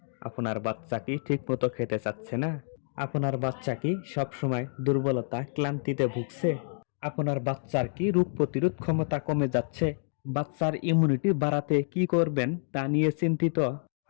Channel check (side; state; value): right; silent; digital silence